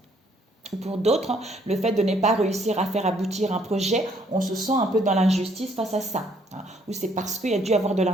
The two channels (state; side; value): normal; both; correlation 0.66